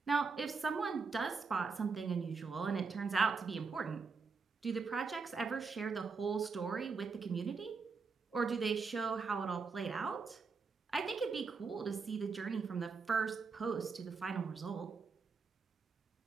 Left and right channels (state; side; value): quieter; left; 4.9 dB